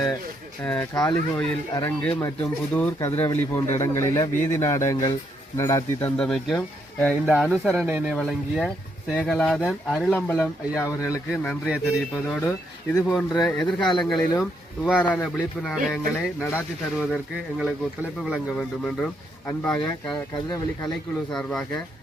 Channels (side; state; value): both; normal; correlation 0.75